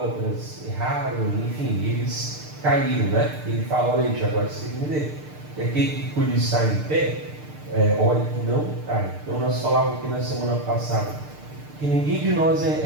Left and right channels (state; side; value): late; left; 6.7 ms